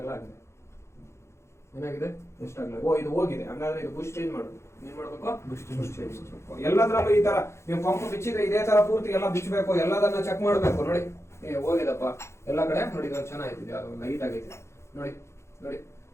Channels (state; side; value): late; right; 0.13 ms